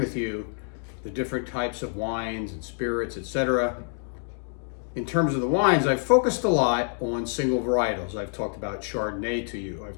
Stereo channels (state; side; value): silent; right; 56 dB below the other